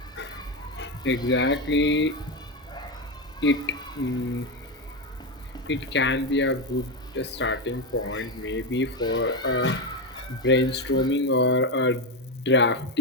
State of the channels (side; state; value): both; normal; correlation 0.11